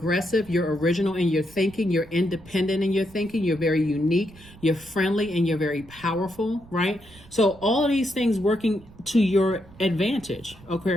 You're original in your thinking. You're independent in your thinking. You're very unique. You're friendly, and you're very powerful, right? So all of these things working to your advantage,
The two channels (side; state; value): right; noise; rumble, 22 dB below the sound